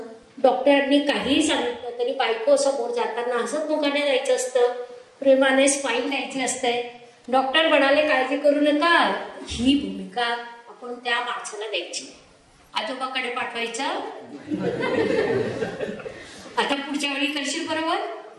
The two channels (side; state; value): both; identical; correlation 1.00